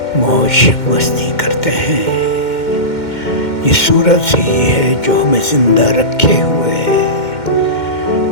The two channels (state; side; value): late; right; 2.1 ms